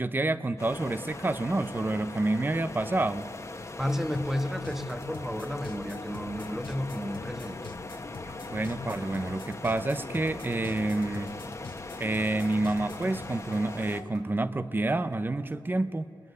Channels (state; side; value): normal; both; correlation 0.88